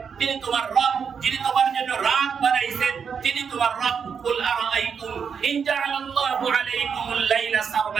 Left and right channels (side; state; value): left; quieter; 6.6 dB